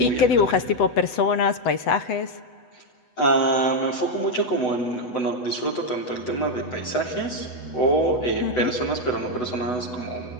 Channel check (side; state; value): right; late; 8.0 ms